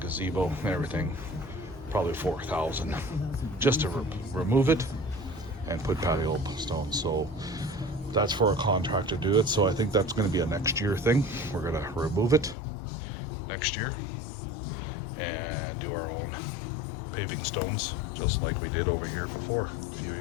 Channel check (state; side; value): drops out; right; at 12.6 s